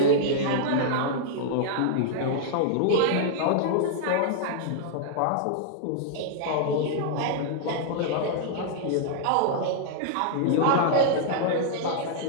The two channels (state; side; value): different; both; correlation -0.01